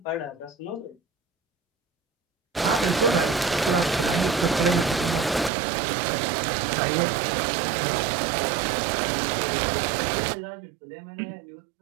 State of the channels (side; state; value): left; drops out; at 5.5 s